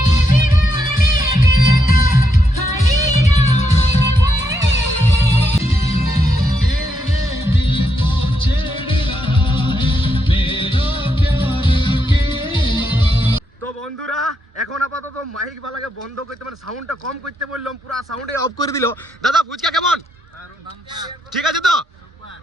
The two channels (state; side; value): normal; both; correlation 0.80